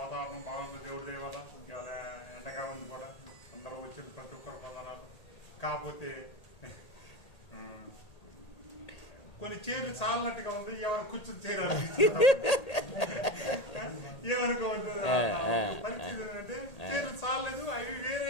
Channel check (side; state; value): right; late; 1.8 ms